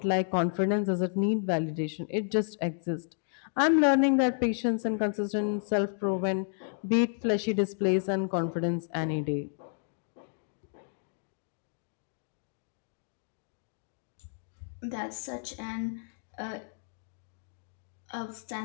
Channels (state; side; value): silent; right; digital silence